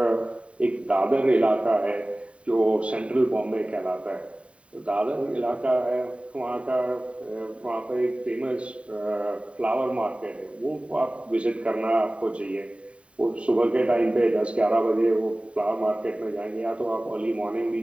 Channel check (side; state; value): left; late; 0.062 ms